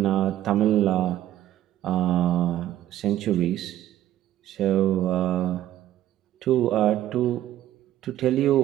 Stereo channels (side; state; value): left; quieter; 13.1 dB